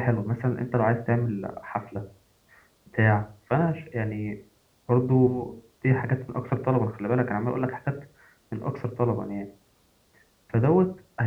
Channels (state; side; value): identical; both; correlation 1.00